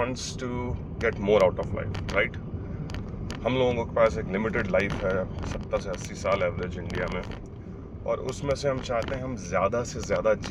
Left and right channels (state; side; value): identical; both; correlation 1.00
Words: to get more out of life, right. हम लोगों के पास एक लिमिटेड लाइफ है, 70 से 80 साल एवरेज इंडिया में, और उसमें से हम चाहते हैं हम ज़्यादा से ज़्यादा